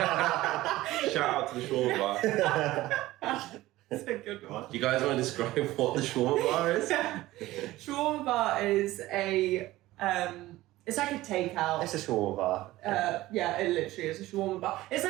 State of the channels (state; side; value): quieter; left; 17.0 dB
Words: shout out to the shawarma bar. That's a good one. Do you guys want to describe what the shawarma bar is? Shawarma bar is a It's like a takeout. It's a shawarma bar. Yeah, it literally is a shawarma bar. It's